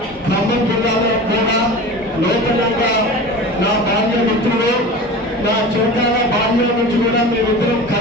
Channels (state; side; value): normal; both; correlation 0.34